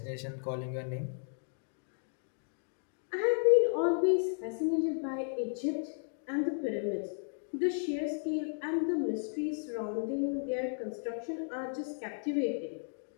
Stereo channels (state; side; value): silent; right; digital silence